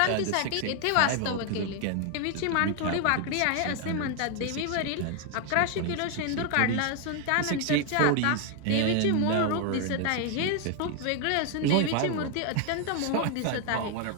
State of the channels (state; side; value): different; both; correlation 0.00